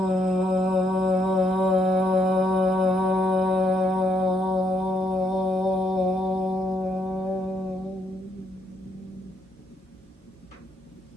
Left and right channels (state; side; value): normal; both; correlation 0.74